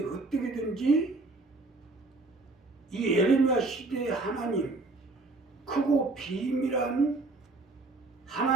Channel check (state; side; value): quieter; left; 3.3 dB